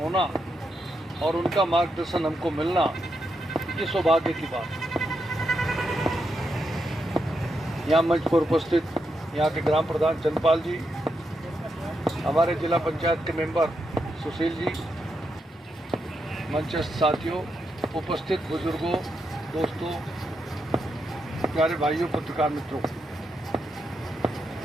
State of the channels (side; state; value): both; normal; correlation 0.83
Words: होना और उनका मार्गदर्शन हमको मिलना, ये सौभाग्य की बात है। यहाँ मंच पर उपस्थित यहाँ के ग्राम प्रधान चंद्रपाल जी, हमारे जिला पंचायत के मेंबर सुशील जी, मंचस्थ साथियों, उपस्थित बुजुर्गों, दोस्तों, प्यारे भाइयों, पत्रकार मित्रों,